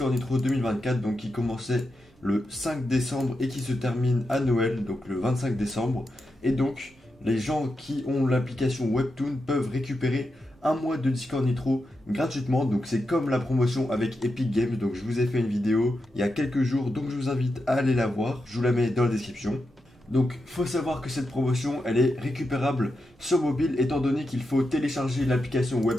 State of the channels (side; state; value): both; normal; correlation 0.87